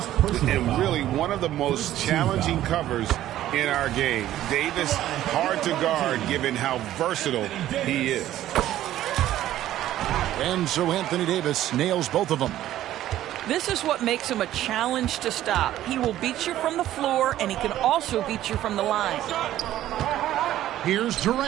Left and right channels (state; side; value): quieter; left; 13.2 dB